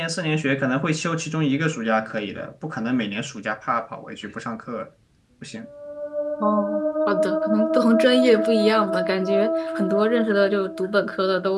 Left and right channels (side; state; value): both; identical; correlation 1.00